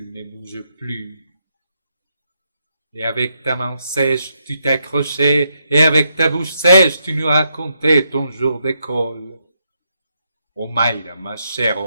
ne bougent plus. Et avec ta main sèche, tu t'accrochais, et avec ta bouche sèche, tu nous racontais ton jour d'école. Omaïra, ma chère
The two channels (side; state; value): both; inverted; correlation -0.80